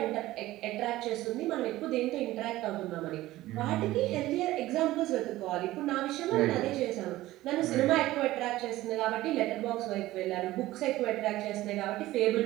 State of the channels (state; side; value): quieter; left; 16.5 dB